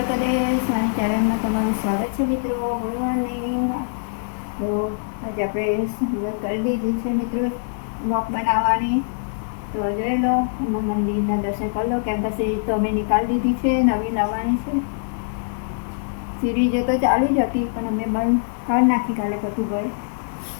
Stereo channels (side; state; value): right; silent; digital silence